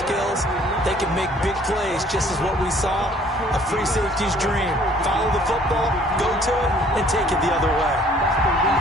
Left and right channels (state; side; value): normal; both; correlation 0.57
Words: they can make big plays, just as what we saw. A free safety's dream. Follow the football, go to it, and take it the other way.